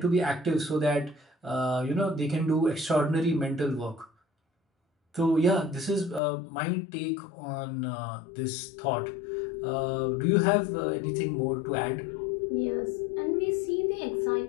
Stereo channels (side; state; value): right; drops out; at 6.2 s